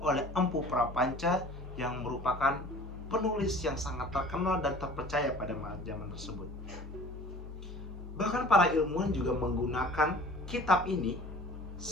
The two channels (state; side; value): normal; both; correlation 0.45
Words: Empu Prapanca yang merupakan penulis yang sangat terkenal dan terpercaya pada zaman tersebut. Bahkan para ilmuwan juga menggunakan kitab ini